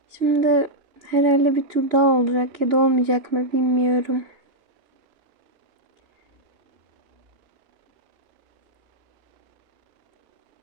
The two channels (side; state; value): left; late; 2.9 ms